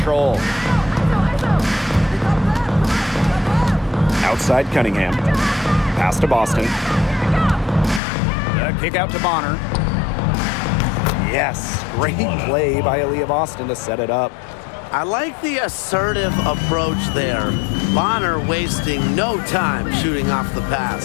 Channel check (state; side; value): drops out; right; at 8.0 s